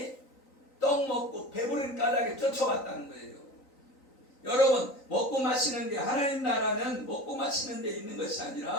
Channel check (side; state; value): right; late; 3.9 ms